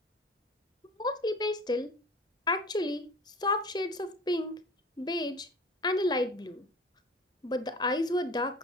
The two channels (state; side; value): normal; both; correlation 0.40